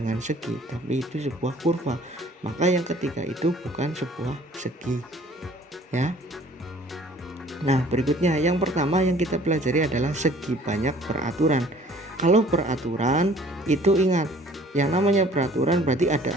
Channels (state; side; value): normal; both; correlation 0.54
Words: segi, tapi itu sebuah kurva. Maka yang ketiga itu bukan sebuah segi. Ya. Nah, berikutnya yang pertama yang kita pelajari adalah segi banyak peraturan. Kalau peraturan itu ingat, yang namanya peraturan berarti ada